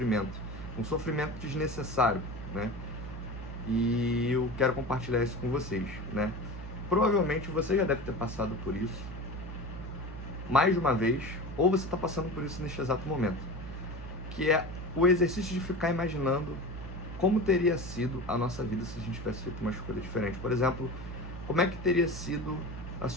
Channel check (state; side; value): noise; left; hum, 15 dB below the sound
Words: um sofrimento desnecessário, né? E eu quero compartilhar isso com vocês, né? Provavelmente você já deve ter passado por isso mais de uma vez, ou você está passando por isso neste exato momento, que é o exercício de ficar imaginando como teria sido a nossa vida se a gente tivesse feito uma escolha diferente. Por exemplo, como é que teria sido a